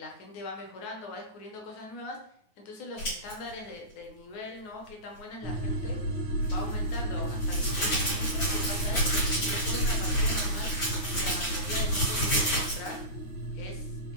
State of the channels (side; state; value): right; late; 9.5 ms